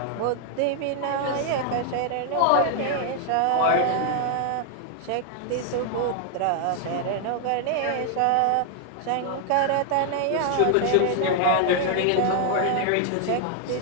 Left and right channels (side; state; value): both; different; correlation 0.00